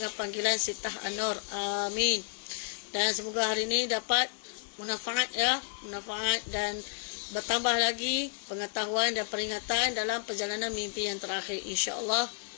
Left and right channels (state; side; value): silent; right; 57 dB below the other